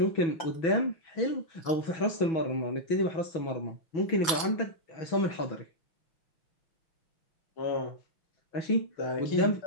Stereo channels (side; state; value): right; late; 5.8 ms